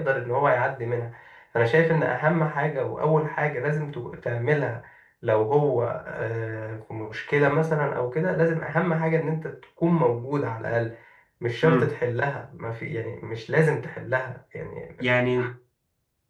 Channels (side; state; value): both; identical; correlation 1.00